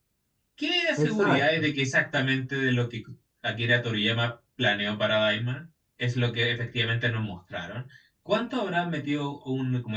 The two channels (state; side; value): identical; both; correlation 1.00